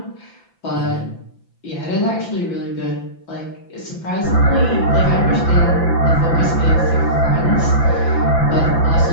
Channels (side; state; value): right; late; 5.9 ms